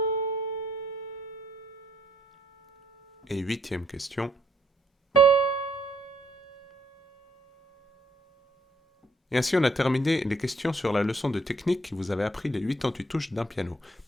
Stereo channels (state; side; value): normal; both; correlation 0.69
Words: Et huitième question. Et ainsi on a terminé les questions sur la leçon de technique qui vous avait appris les 88 touches d'un piano.